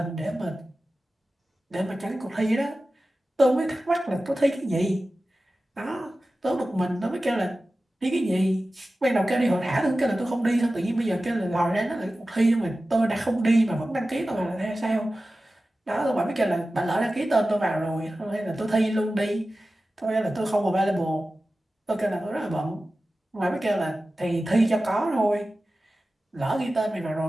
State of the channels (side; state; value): both; normal; correlation 0.95